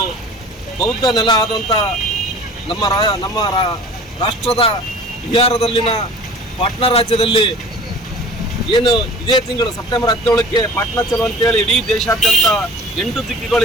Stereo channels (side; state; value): both; normal; correlation 0.43